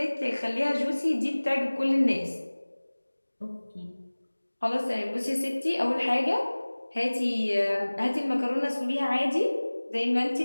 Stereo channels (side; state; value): both; inverted; correlation -1.00